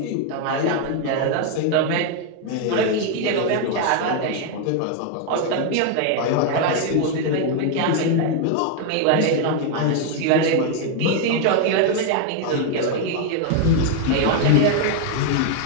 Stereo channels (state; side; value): different; both; correlation 0.01